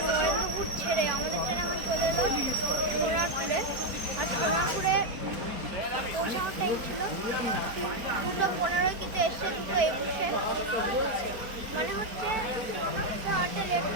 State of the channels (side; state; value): left; late; 4.6 ms